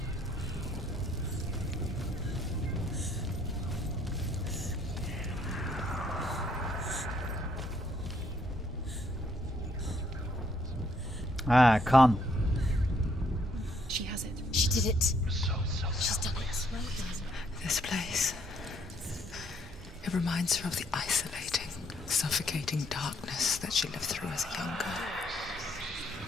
Ha, kan. She has it. She did it. She's done it. This place. It reminds her of the isolating, suffocating darkness that she lived through as a young girl.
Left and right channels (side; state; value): both; normal; correlation 0.69